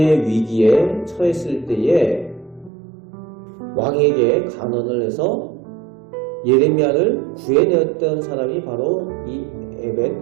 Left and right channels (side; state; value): left; drops out; at 2.7 s